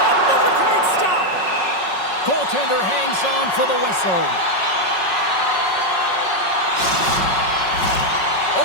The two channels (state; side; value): late; right; 5.4 ms